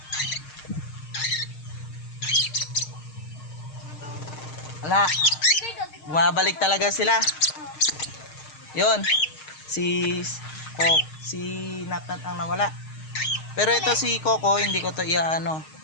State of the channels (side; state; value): right; late; 6.5 ms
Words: Wala, bumabalik talaga sila. Yun, si Natnat ang nawala. Pero ito si Coco, hindi ko to